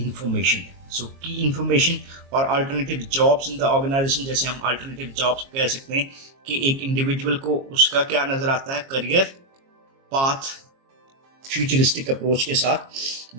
So key information और alternative jobs in the organisation, जैसे हम अल्टरनेटिव जॉब्स कह सकते हैं कि एक इंडिविजुअल को उसका क्या नजर आता है, करियर पाथ फ्यूचरिस्टिक अप्रोच के साथ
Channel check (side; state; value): left; late; 22 ms